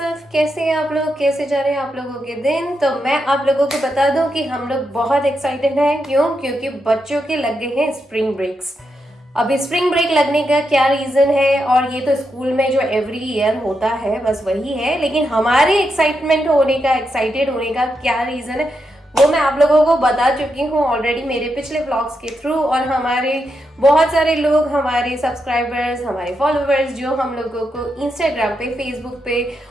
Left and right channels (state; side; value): normal; both; correlation 0.84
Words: कैसे हैं आप लोग, कैसे जा रहे हैं आप लोगों के दिन? तो मैं आप लोगों को बता दूं कि हम लोग बहुत एक्साइटेड हैं। क्यों? क्योंकि बच्चों के लग गए हैं स्प्रिंग ब्रेक्स। अभी स्प्रिंग ब्रेक लगने का क्या रीजन है, और ये तो स्कूल में जो एवरी ईयर होता है बस वही है, लेकिन हमारे एक्साइटेड होने का क्या रीजन है वो मैं आप लोगों को बता चुकी हूँ ऑलरेडी मेरे पिछले व्लॉग्स के थ्रू। और हमारे बहुत सारे लोग, हमारे सब्सक्राइबर्स, हमारे फॉलोअर्स जो हम लोगों को इंस्टाग्राम पे, फेसबुक पे